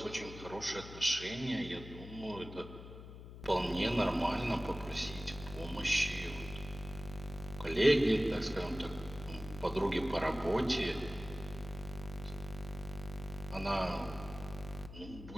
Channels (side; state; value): left; noise; hum, 13 dB below the sound